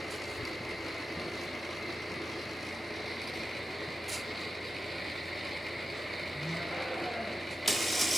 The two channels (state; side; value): normal; both; correlation 0.90